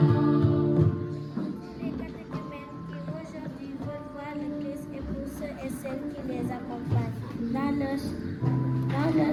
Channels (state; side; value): identical; both; correlation 1.00